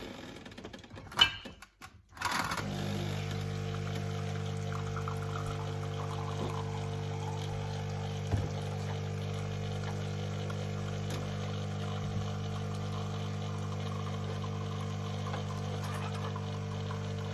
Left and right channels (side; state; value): both; identical; correlation 1.00